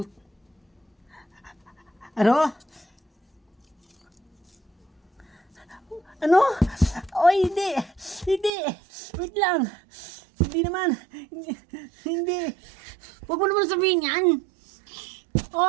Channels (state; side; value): drops out; left; at 8.5 s